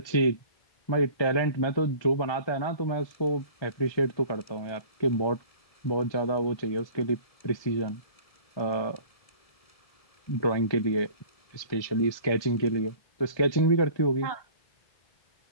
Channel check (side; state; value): right; late; 1.3 ms